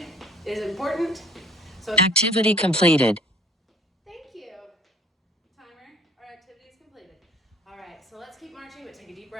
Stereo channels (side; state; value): both; normal; correlation 0.51